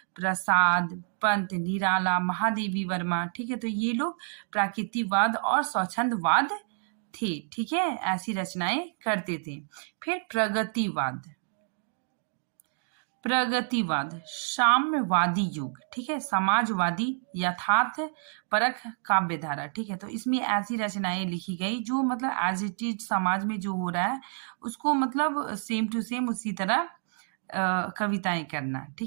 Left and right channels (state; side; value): silent; left; 59 dB below the other